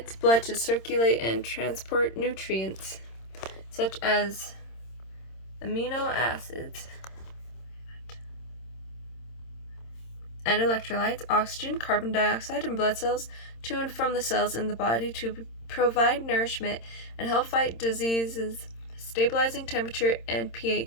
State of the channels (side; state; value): right; late; 26 ms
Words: blood to circulate and transport nutrients such as amino acids and electrolytes, oxygen, carbon dioxide, and blood cells to and from the cells in the body to provide nourishment and help fight diseases, stabilizing temperature and